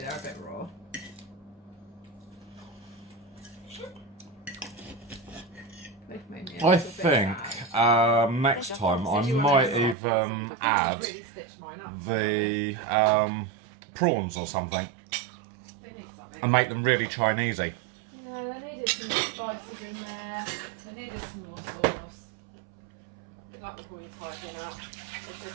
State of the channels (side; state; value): left; drops out; at 10.0 s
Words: a bit raw. They've made me a I little bit think sad. next time I might even add Really stitched mine up. the prawns or something They need something. and make them really Chinesey. Yeah, they needed some more spices in there. They needed some more sauce. Like the boys hiding out.